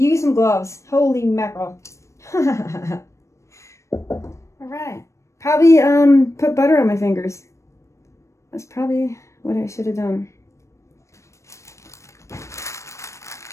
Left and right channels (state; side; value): late; right; 0.14 ms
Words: some gloves. Holy mackerel. All right. Probably put butter on my fingers. That's probably what I should have done.